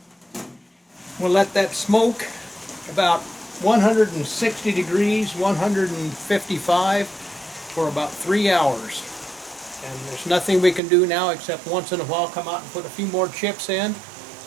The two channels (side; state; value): left; drops out; at 10.8 s